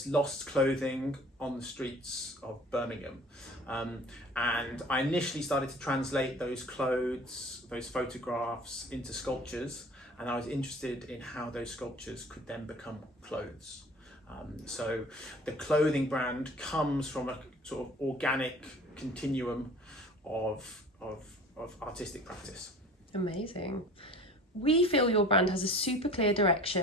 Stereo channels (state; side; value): normal; both; correlation 0.44